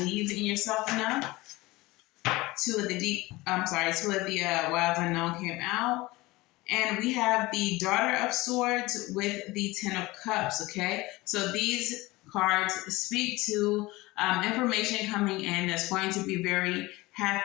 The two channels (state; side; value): quieter; right; 20.7 dB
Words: in yourself enough. Two of the Wild Unknown came out. And we have the Daughter of Swords with the Ten of Cups, okay? So these cards speak to information coming in that's going to be very